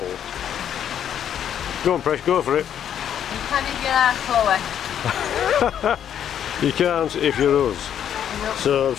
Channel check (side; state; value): right; quieter; 9.5 dB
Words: Go on, Presh, go for it. You can if you're Chloe. You can't if you're us. Nope. So, I'm